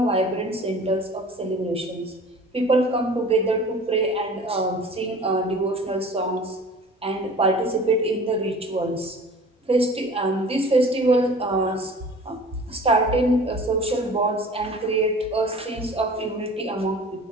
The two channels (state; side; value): normal; both; correlation 0.43